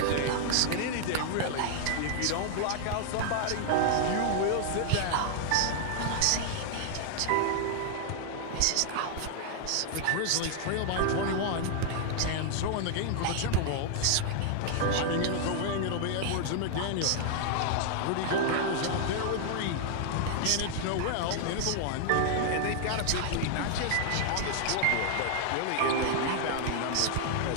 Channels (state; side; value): different; both; correlation 0.00